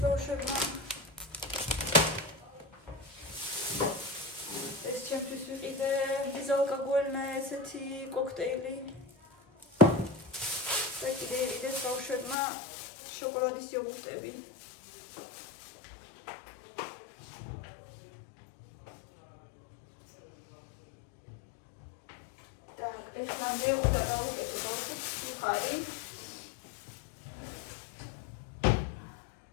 ბავშვებმა. ეს ჩემთვის ვიყიდე ბიზალკოგოლნა ესეთი კოქტეილი. და კიდე იყიდეს ბავშვებმა შოკოლადის იოგურტები. ეხლა მეუდა გავუკეთე ბავშვებს მხარი.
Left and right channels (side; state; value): right; drops out; at 12.4 s